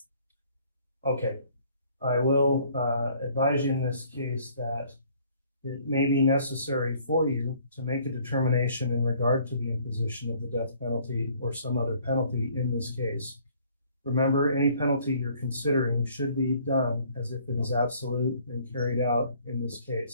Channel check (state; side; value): inverted; both; correlation -0.59